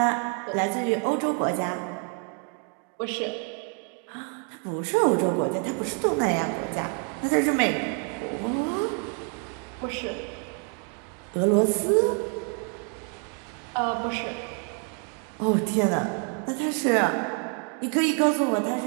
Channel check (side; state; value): left; quieter; 37.8 dB